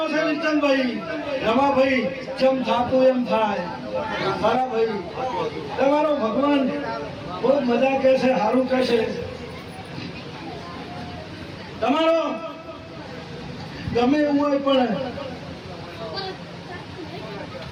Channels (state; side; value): identical; both; correlation 1.00